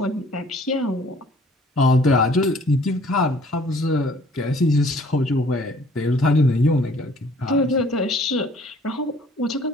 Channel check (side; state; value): both; normal; correlation 0.56